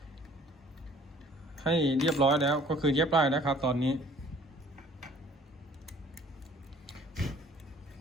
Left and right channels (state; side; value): normal; both; correlation 0.54